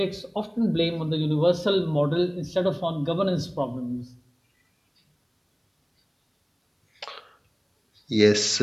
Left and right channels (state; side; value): identical; both; correlation 1.00